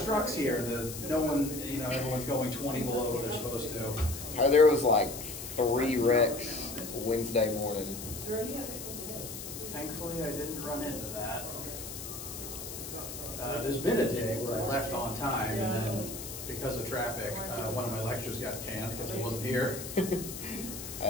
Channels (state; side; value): noise; left; hiss, 9 dB below the sound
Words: trucks here. No one, you know, everyone's going 20 below what they're supposed to. There was like 3 wrecks Wednesday morning. Thankfully, I didn't run into that. There's been a day where I left on time, and then because of traffic, one of my lectures got canned because I wasn't here.